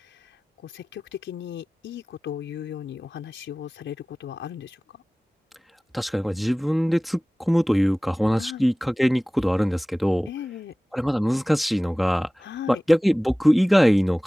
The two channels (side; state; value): both; normal; correlation 0.98